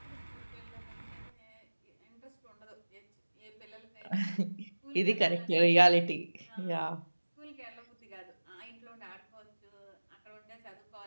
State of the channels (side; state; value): both; inverted; correlation -1.00